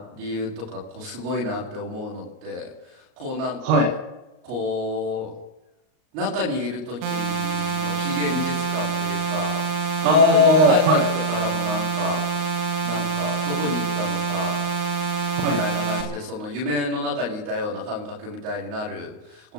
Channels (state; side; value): late; left; 38 ms